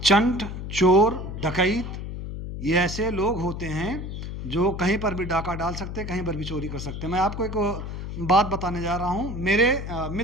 चंट, चोर, डकैत ये ऐसे लोग होते हैं जो कहीं पर भी डाका डाल सकते हैं, कहीं पर भी चोरी कर सकते हैं। मैं आपको एक बात बताने जा रहा हूँ, मेरे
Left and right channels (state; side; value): noise; left; hum, 7 dB below the sound